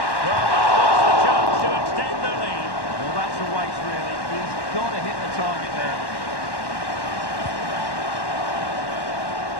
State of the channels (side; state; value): right; late; 1.1 ms